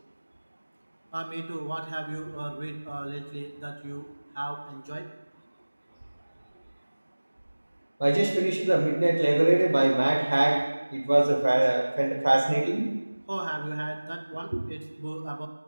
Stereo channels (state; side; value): inverted; both; correlation -1.00